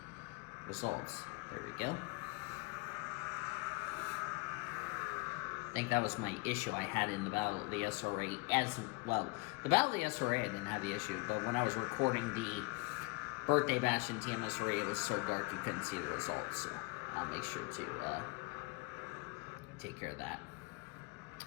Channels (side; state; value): right; quieter; 26.6 dB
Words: results. There we go. I think that was my issue I had in the Battle of the SRA as well. The Battle of the SRA, I didn't have the issue, but when I was recording the Birthday Bash in TMSRA, it was so dark you couldn't see the results, so I'll make sure to take care of that.